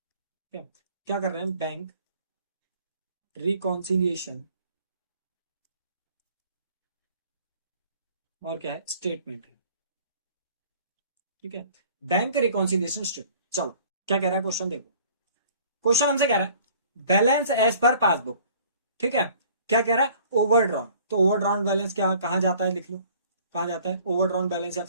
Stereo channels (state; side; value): inverted; both; correlation -0.53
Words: क्या क्या कर रहे हैं, बैंक रिकॉन्सिलिएशन और क्या है स्टेटमेंट है। ठीक है, बैंक रिकॉन्सिलिएशन स्टेटमेंट। चलो क्या कह रहा है क्वेश्चन, देखो क्वेश्चन हमसे कह रहा है बैलेंस एज पर पासबुक। ठीक है, क्या कह रहा है ओवरड्रॉन। तो ओवरड्रॉन बैलेंस क्या कहां जाता है, लिख लो कहां जाता है ओवरड्रॉन बैलेंस या